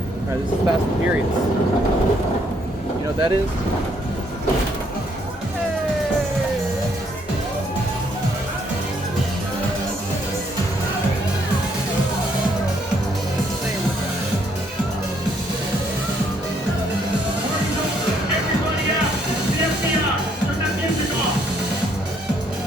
Alright, this is Fast and Furious. You know what that is?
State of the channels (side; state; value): both; normal; correlation 0.69